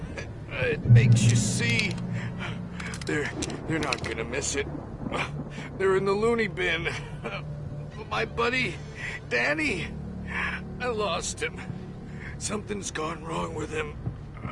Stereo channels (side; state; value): both; identical; correlation 1.00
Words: It makes you see. They're not gonna miss it. They're in the loony bin. My buddy, Danny, I lost him. Something's gone wrong with him.